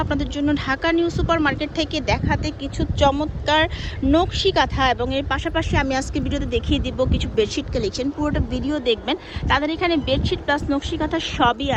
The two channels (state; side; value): identical; both; correlation 1.00